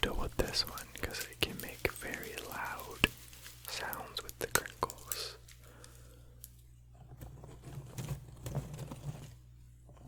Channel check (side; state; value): both; identical; correlation 1.00